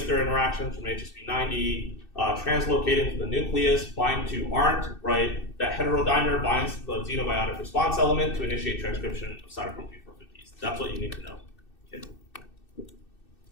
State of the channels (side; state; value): right; late; 2.6 ms